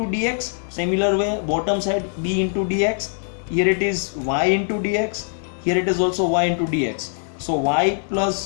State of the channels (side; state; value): right; silent; 64 dB below the other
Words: dx, similar way bottom side b into dx, here it is y into dx, here it is also y into dx. So y